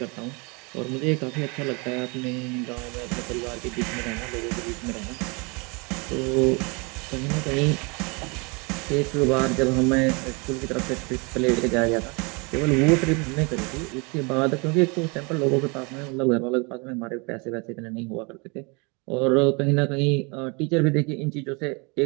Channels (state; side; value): quieter; left; 30.5 dB